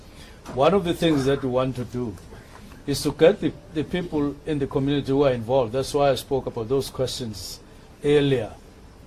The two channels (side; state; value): both; identical; correlation 1.00